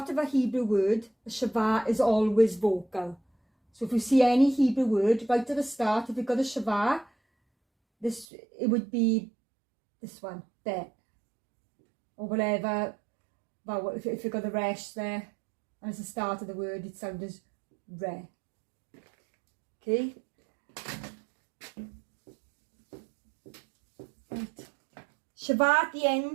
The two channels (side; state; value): left; drops out; at 8.2 s